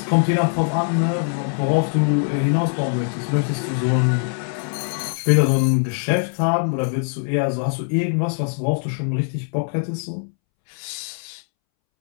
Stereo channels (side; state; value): right; silent; 64 dB below the other